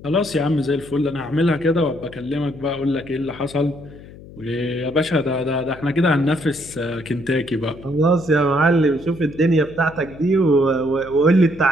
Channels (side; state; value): left; noise; hum, 18 dB below the sound